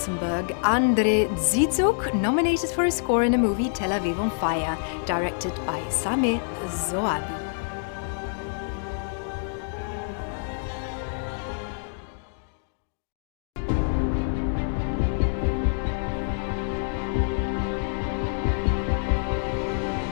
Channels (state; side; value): silent; right; digital silence